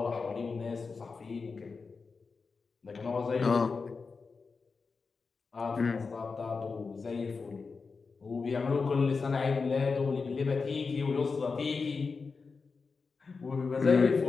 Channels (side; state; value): right; quieter; 4.7 dB